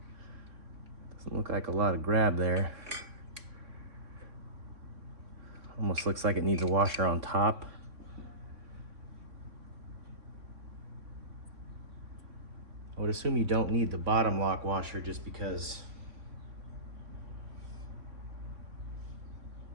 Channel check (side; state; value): left; late; 3.6 ms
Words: look like a lot of grab there. Almost looks like it needs a washer on top. I would assume you don't need the bottom lock washer just because